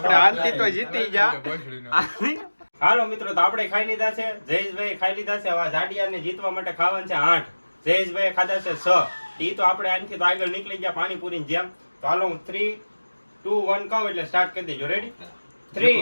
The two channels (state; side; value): inverted; both; correlation -1.00